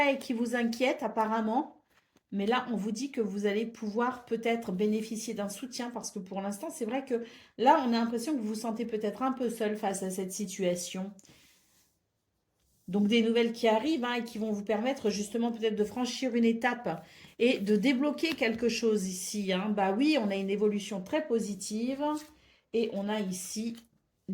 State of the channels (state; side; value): identical; both; correlation 1.00